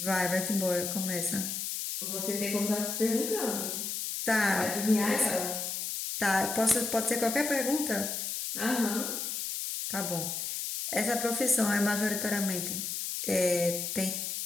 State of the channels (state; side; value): noise; left; hiss, 3 dB below the sound